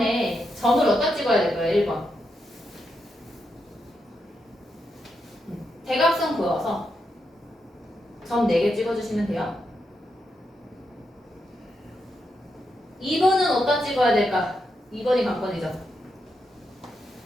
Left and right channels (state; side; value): normal; both; correlation 0.83